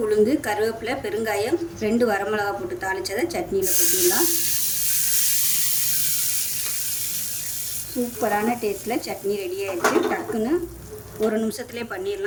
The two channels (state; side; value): identical; both; correlation 1.00